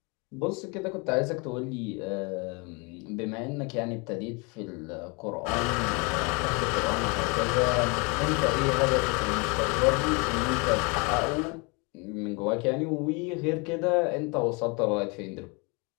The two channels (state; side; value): quieter; right; 30.4 dB